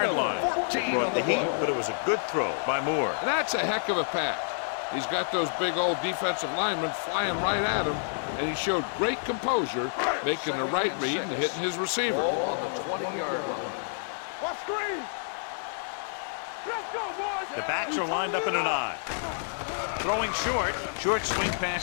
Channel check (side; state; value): right; silent; digital silence